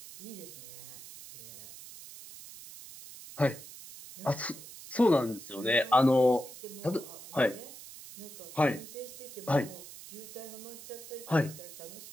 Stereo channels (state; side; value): noise; right; hiss, 14 dB below the sound